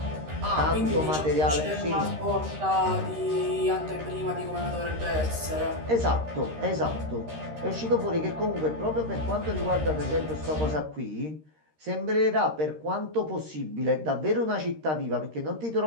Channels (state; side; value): late; left; 13 ms